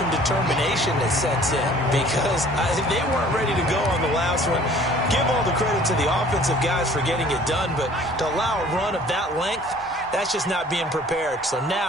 determination that sets in, because they weren't ready to go on the last one. Give all the credit to the offensive guys for getting it done, but to allow a run of that length, that's just not being prepared. So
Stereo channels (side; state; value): both; normal; correlation 0.52